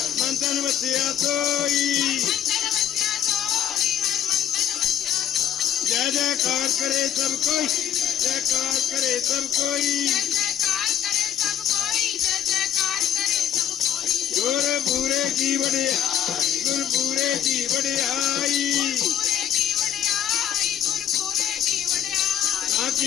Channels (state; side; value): quieter; right; 10.2 dB